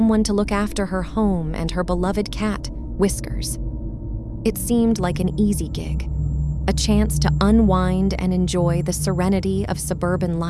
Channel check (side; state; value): both; identical; correlation 1.00